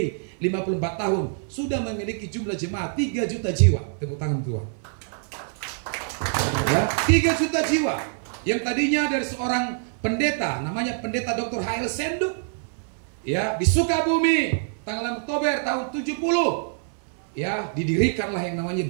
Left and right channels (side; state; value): left; silent; 62 dB below the other